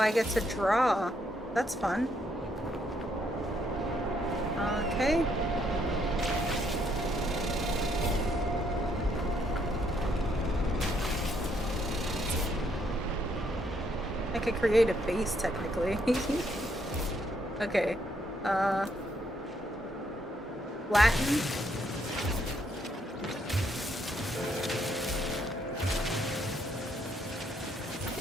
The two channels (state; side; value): normal; both; correlation 0.72